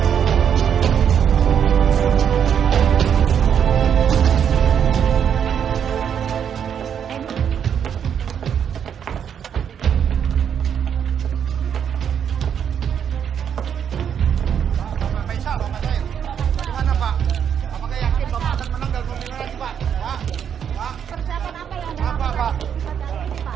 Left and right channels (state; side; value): quieter; left; 8.2 dB